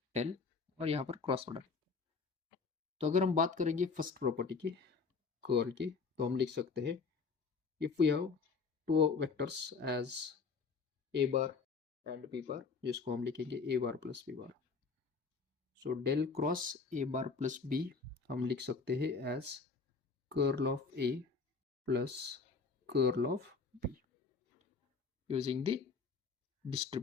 del, और यहाँ पर क्रॉस प्रोडक्ट। तो अगर हम बात करेंगे फर्स्ट प्रॉपर्टी की, कर्ल की, तो हम लिख सकते हैं if we have two vectors as a bar and b bar, जिसको हम लिखेंगे a bar plus b bar, so del cross a bar plus b हम लिख सकते हैं as curl of a plus curl of b using the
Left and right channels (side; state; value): right; quieter; 4.8 dB